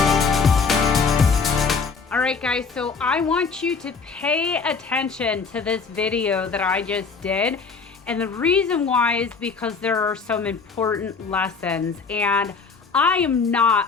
Alright guys, so I want you to pay attention to this video that I just did. And the reason why is because there are some important lessons, and I am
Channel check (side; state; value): right; quieter; 5.1 dB